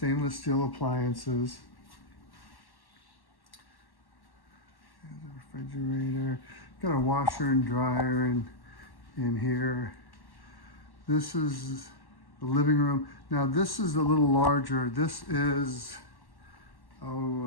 steel appliances. There's a refrigerator. Got a washer and dryer in here. This is the living room. Now this is a little larger. This is,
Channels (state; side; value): late; right; 1.1 ms